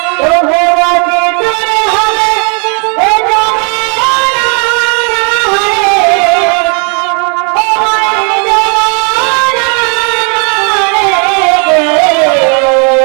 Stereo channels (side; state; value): left; quieter; 37.7 dB